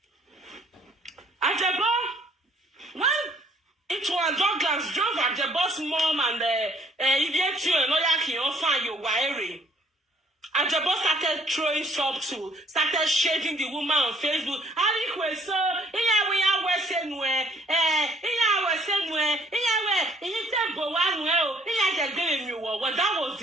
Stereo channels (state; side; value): normal; both; correlation 0.61